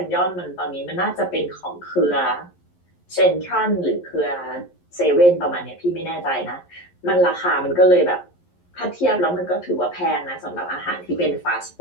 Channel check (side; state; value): right; late; 11 ms